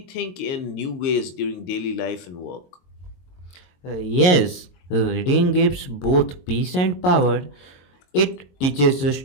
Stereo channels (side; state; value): right; late; 22 ms